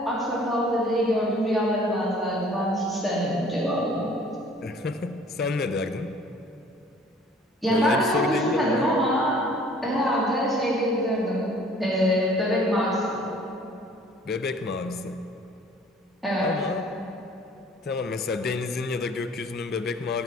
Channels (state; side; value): normal; both; correlation 0.53